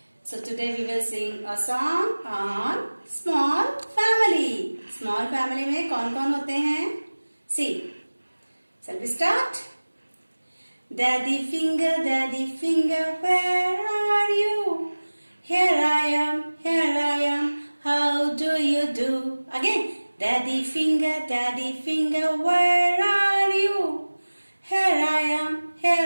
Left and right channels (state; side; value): inverted; both; correlation -1.00